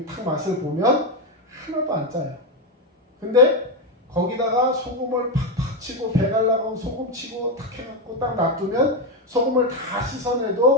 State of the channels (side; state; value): both; normal; correlation 0.08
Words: 탁 맛을 보면 하나도 안 짜요. 근데 거기다가 소금을 팍팍 치고 배 갈라고 소금 치고 탁 해갖고 딱 놔두면 소금을 다